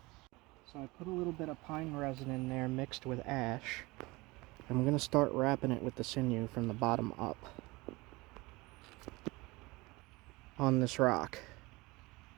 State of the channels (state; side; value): quieter; left; 23.0 dB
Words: So I put a little bit of pine resin in there mixed with ash, and we're going to start wrapping it with the sinew from the bottom up on this rock